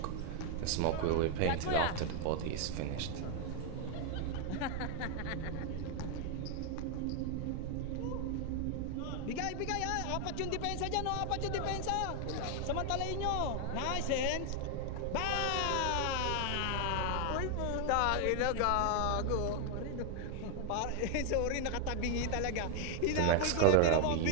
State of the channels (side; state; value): both; different; correlation 0.00